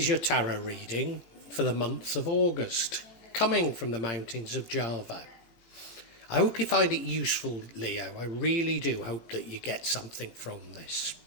your tarot reading for the month of August, coming from the mountains of Java. I hope you find it useful, Leo. I really do hope that you get something from this.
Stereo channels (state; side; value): late; right; 17 ms